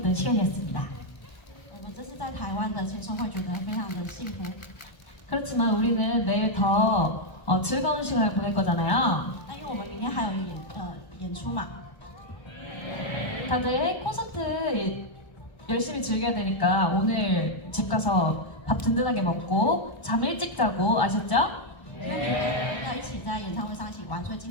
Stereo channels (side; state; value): right; late; 1.3 ms